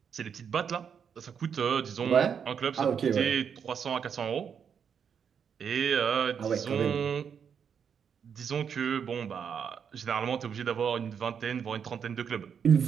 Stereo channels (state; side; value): quieter; left; 7.3 dB